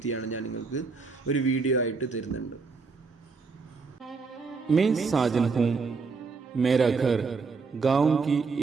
ഞാൻ നിങ്ങൾക്ക് ഒരു വീഡിയോ ആയിട്ട് തരുന്നുണ്ട്. मैं साजन हूँ. मेरा घर गांव की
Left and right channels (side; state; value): left; quieter; 4.6 dB